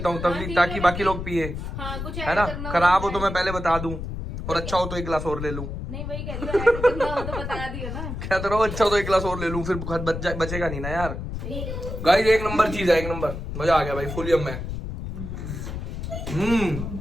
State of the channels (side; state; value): left; noise; rumble, 6 dB below the sound